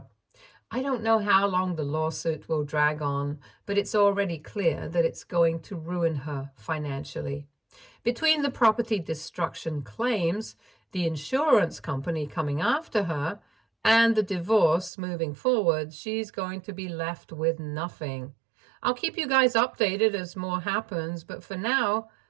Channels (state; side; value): drops out; left; at 14.9 s